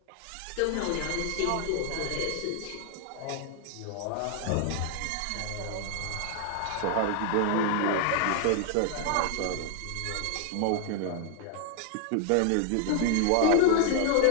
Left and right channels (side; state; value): both; different; correlation 0.00